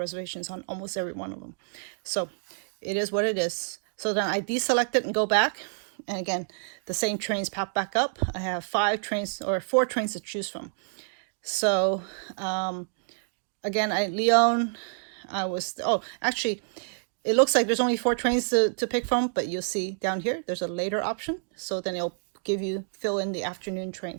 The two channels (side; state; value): left; silent; digital silence